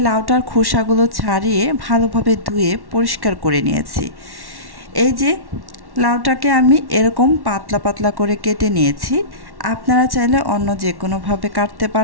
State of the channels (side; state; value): left; late; 1.1 ms